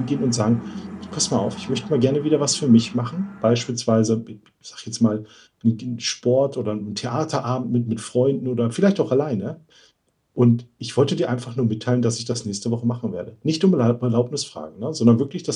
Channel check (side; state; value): both; identical; correlation 1.00